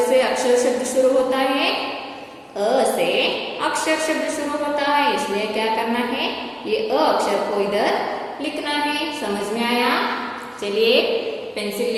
से अक्षर शब्द शुरू होता है? अ से अक्षर शब्द शुरू होता है, इसलिए क्या करना है? ये अ अक्षर को इधर लिखना है। समझ में आया? चलिए पेंसिल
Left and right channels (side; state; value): both; identical; correlation 1.00